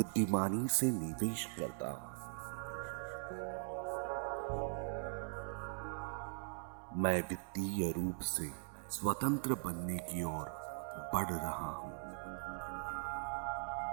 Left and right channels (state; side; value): silent; left; 51 dB below the other